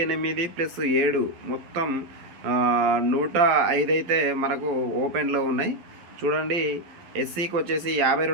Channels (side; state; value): left; late; 11 ms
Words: మొత్తం 105 అయితే మనకు ఓపెన్లో ఉన్నాయి. చూడండి, ఎస్సీకి వచ్చేసి